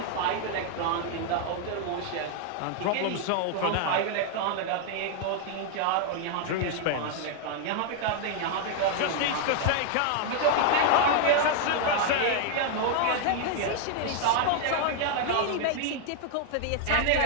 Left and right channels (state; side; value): different; both; correlation 0.00